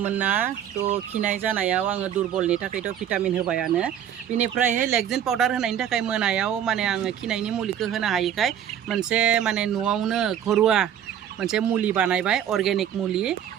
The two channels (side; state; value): left; quieter; 9.7 dB